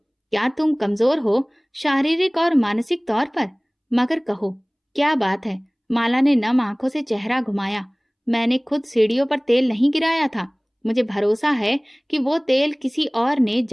क्या तुम कमजोर हो शारीरिक और मानसिक तौर पर? मगर कहो, क्या बात है? माला ने नम आंखों से चेहरा घुमाया। मैंने खुद सीढ़ियों पर तेल नहीं गिराया था, मुझे भरोसा है कि वो तेल किसी और ने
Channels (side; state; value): both; identical; correlation 1.00